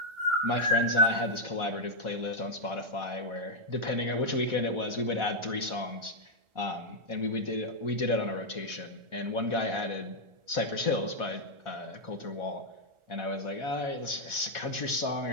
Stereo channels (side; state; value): left; late; 1.4 ms